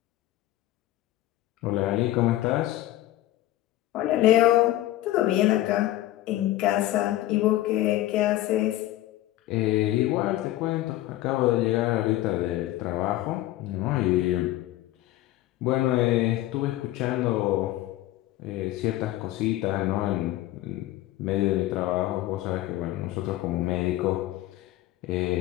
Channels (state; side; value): quieter; right; 15.3 dB